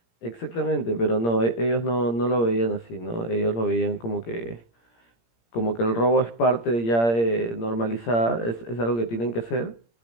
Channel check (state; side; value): late; right; 17 ms